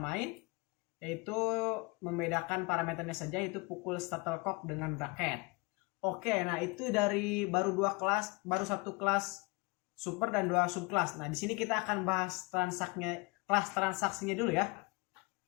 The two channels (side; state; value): right; quieter; 26.9 dB